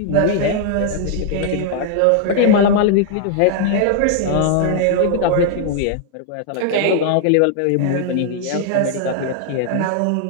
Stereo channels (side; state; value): both; different; correlation 0.00